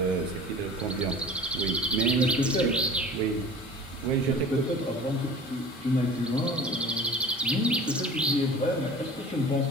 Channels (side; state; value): both; normal; correlation 0.42